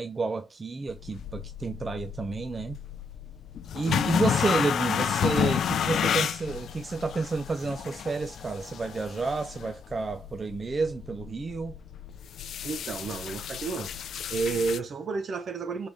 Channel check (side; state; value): both; normal; correlation 0.76